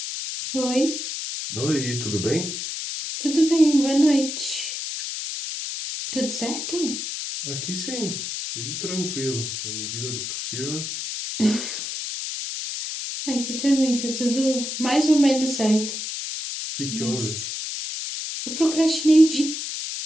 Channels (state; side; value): noise; left; hiss, 5 dB below the sound